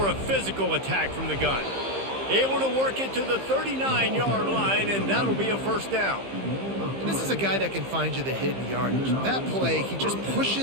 a physical attack from the gun. Able to work it to the 39-yard line, and that'll be a first down. And this is a guy that can find you the hidden yardage. That play, he just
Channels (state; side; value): late; left; 15 ms